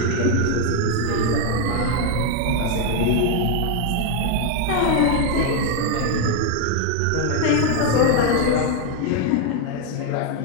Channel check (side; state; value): both; different; correlation 0.01